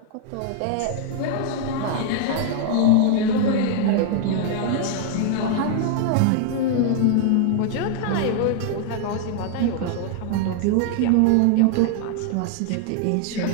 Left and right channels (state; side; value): different; both; correlation 0.00